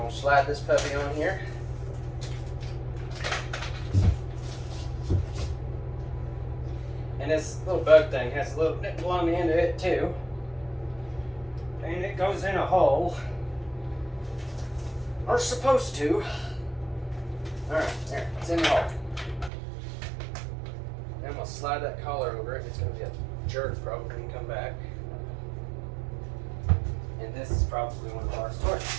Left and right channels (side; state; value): left; drops out; at 19.5 s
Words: to slide this puppy on here. And this little bug thing has a little nipple on the end of it too. And it goes in a hole. Or supposed to. Alright, there, it's in the hole. Then I'm going to slide that collar over it. It's going to be a jerk probably when you come back. And this is probably one of our stores.